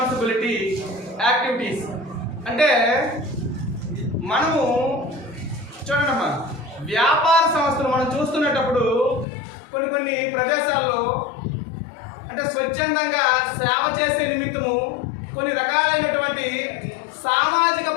యాక్టివిటీస్. అంటే మనము చూడండమ్మా, వ్యాపార సంస్థలు మనం చూస్తున్నప్పుడు కొన్ని ప్రదేశాల్లో అంటే స్వచ్ఛందంగా సేవ చేసే నిమిత్తము కొన్ని రకాలైనటువంటి సామాజిక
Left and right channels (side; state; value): right; drops out; at 9.2 s